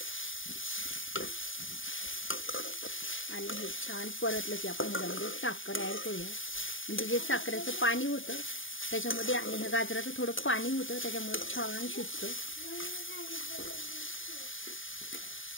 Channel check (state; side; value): late; right; 0.58 ms